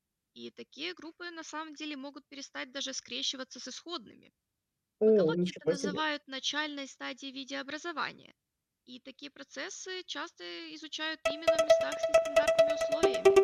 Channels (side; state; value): both; identical; correlation 1.00